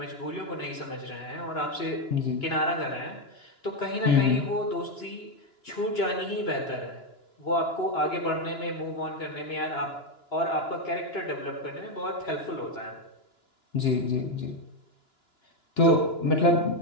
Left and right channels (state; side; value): late; right; 2.9 ms